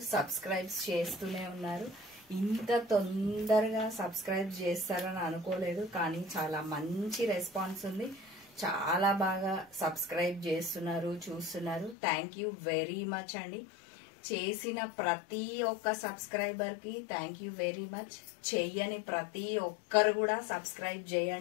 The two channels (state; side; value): drops out; right; at 12.0 s